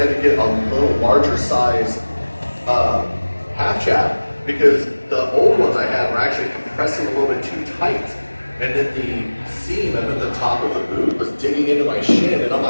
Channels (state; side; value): inverted; both; correlation -1.00